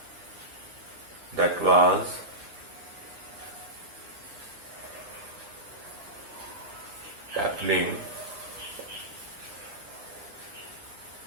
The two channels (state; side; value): late; left; 9.8 ms